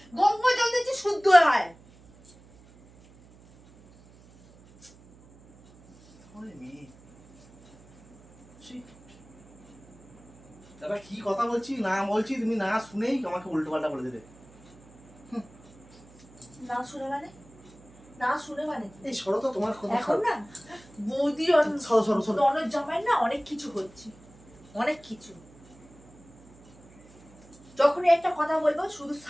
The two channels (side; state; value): right; noise; hum, 25 dB below the sound